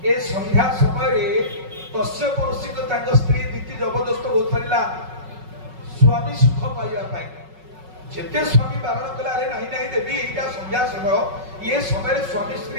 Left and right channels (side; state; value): left; late; 5.4 ms